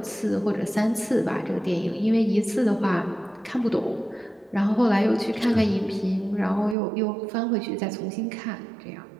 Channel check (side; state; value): left; drops out; at 6.8 s